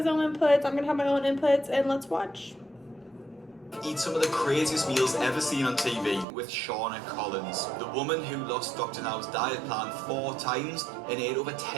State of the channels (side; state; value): left; drops out; at 6.2 s